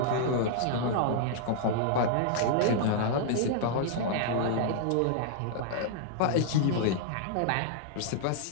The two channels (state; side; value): different; both; correlation -0.01